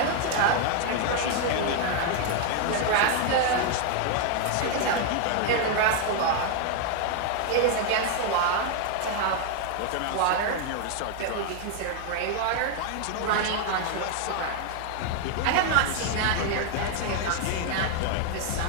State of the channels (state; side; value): different; both; correlation 0.00